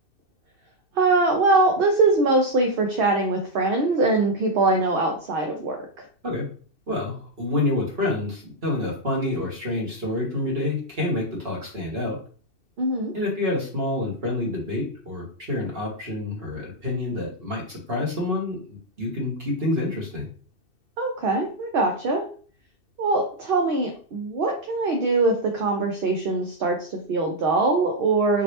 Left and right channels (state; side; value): late; left; 2.6 ms